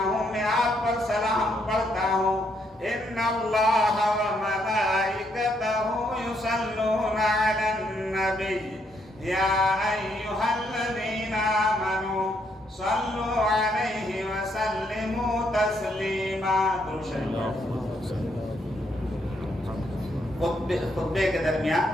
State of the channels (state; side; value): normal; both; correlation 0.74